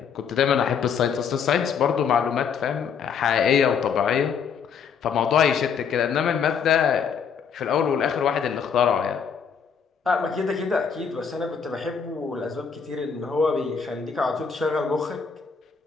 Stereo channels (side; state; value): right; quieter; 6.7 dB